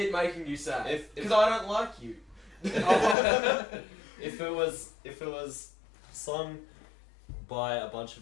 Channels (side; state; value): right; drops out; at 3.2 s